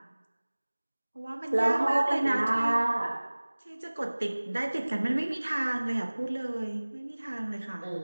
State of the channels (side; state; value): both; inverted; correlation -1.00